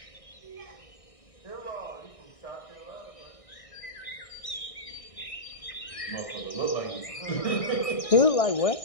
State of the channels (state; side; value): late; right; 1.6 ms